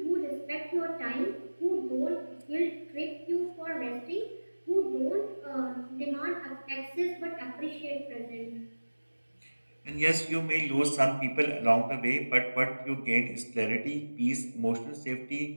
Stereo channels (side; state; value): both; inverted; correlation -1.00